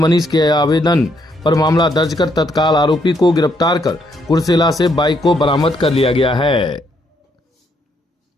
के आवेदन पर मामला दर्ज कर तत्काल आरोपी को गिरफ्तार कर कुर्सेला से बाइक को बरामद कर लिया गया है।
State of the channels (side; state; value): both; normal; correlation 0.73